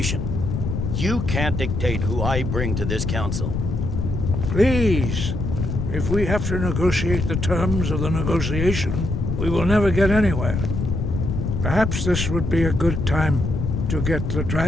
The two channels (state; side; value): noise; left; rumble, 2 dB below the sound